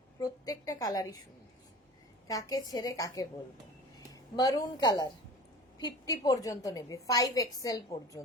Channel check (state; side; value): normal; both; correlation 0.38